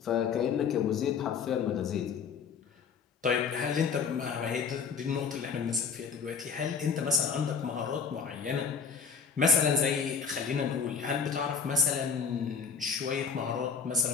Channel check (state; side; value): quieter; right; 6.0 dB